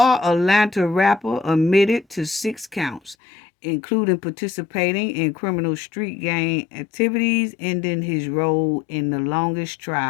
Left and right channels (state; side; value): drops out; right; at 3.2 s